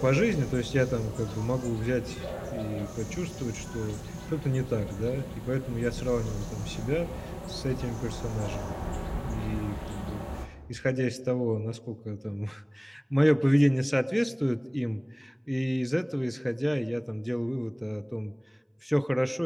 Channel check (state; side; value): identical; both; correlation 1.00